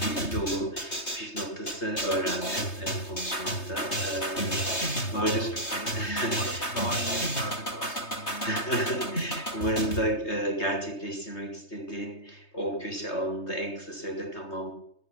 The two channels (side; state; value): right; late; 3.2 ms